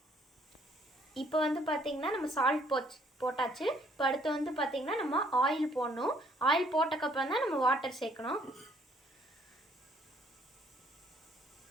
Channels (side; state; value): both; normal; correlation 0.64